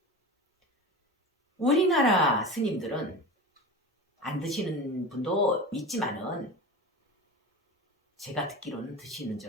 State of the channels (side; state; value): both; normal; correlation 0.30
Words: 우리나라 스님들은 안 드시는 분도 있지만은 제가 듣기로는 드시는